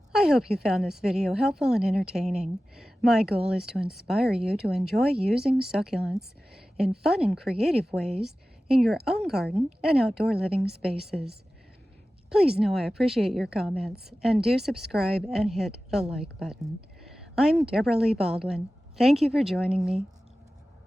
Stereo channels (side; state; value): both; normal; correlation 0.95